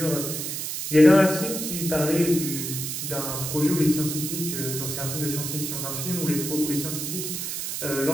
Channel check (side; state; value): right; noise; hiss, 4 dB below the sound